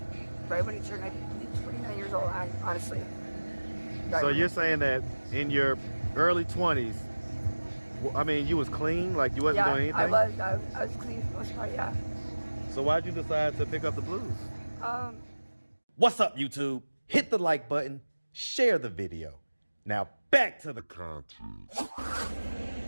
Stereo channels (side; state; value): both; inverted; correlation -1.00